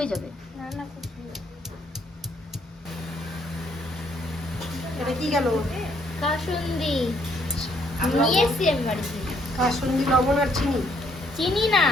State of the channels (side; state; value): both; normal; correlation 0.69